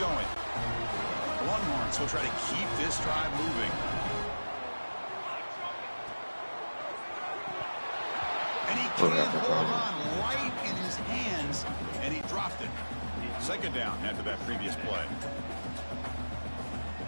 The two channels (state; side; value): inverted; both; correlation -1.00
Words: The Longhorns will try to keep this drive moving. And he can't hold on right in his hands, and he dropped it. Second down after that previous play.